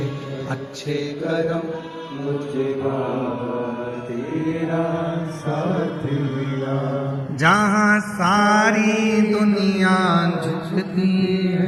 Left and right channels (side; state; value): both; identical; correlation 1.00